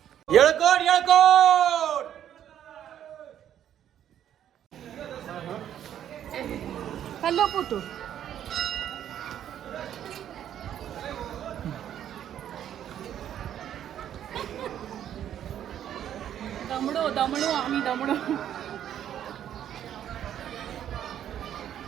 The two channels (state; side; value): quieter; left; 10.4 dB